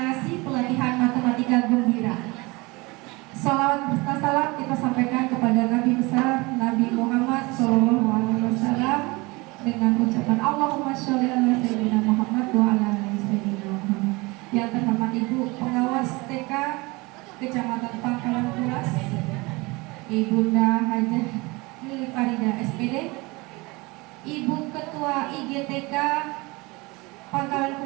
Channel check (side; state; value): left; quieter; 24.5 dB